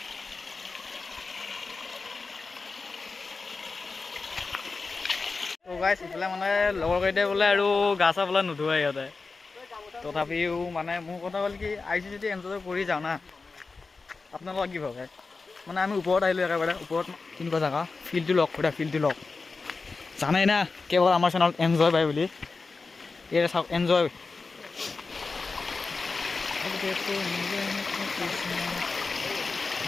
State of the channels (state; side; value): quieter; right; 4.1 dB